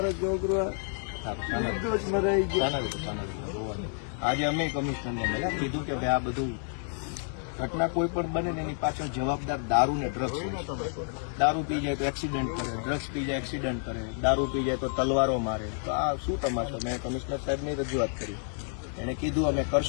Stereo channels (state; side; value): silent; right; 58 dB below the other